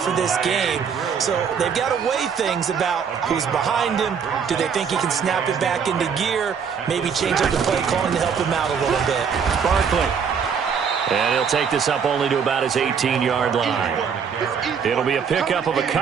this game. So they've got to weigh things about who's behind him. Do they think he can snap it back into gear? Maybe change up the play calling to help him out a little bit. Barkley. And he'll take this up only to about his 18-yard line. It'll be a pickup of a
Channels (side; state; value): left; quieter; 6.7 dB